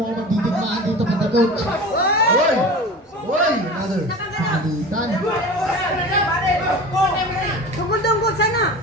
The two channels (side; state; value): both; normal; correlation 0.35